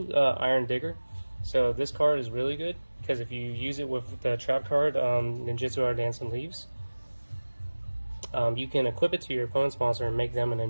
Iron Digger. So this card is really good because if you use it with the trap card, Ninjutsu or Dancing Leaves, You can equip it to your opponent's monster and make them a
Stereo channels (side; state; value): both; inverted; correlation -1.00